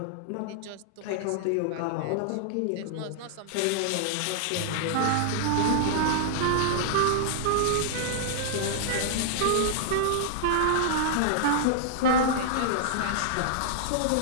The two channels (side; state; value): both; different; correlation -0.01